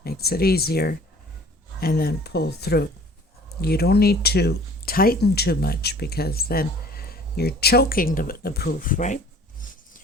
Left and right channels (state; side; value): normal; both; correlation 0.50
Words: makes it easier, and then pull through. You don't need to tighten too much because then you're choking the poof, right?